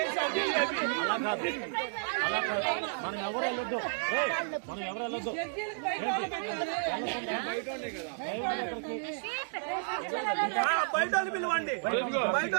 మనం ఎవరు వెళ్ళొద్దు, మనం ఎవరు వెళ్ళొద్దు. బయట పిలవండి, బయట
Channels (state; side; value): silent; left; digital silence